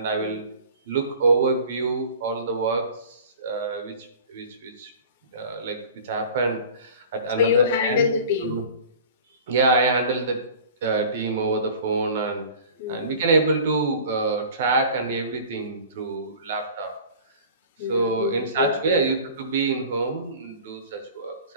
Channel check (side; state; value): both; inverted; correlation -0.43